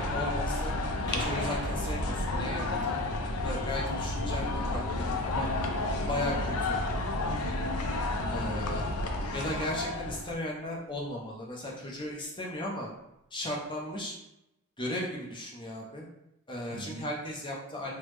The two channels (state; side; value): normal; both; correlation 0.32